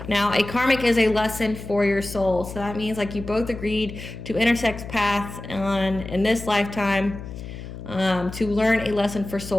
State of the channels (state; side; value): noise; left; hum, 11 dB below the sound